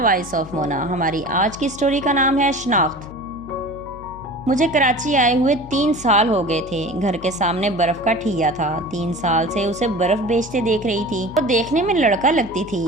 of Mona. हमारी आज की स्टोरी का नाम है शनाख्त। मुझे कराची आए हुए 3 साल हो गए थे। घर के सामने बर्फ़ का ठिया था। 3 साल से उसे बर्फ़ बेचते देख रही थी। वो देखने में लड़का लगती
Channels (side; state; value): left; noise; hum, 17 dB below the sound